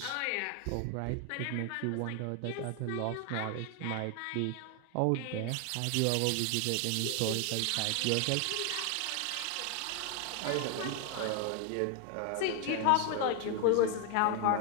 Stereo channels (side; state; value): both; different; correlation 0.01